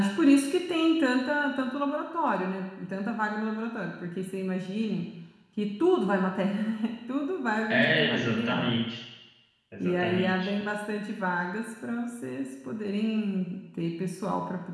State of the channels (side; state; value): both; identical; correlation 1.00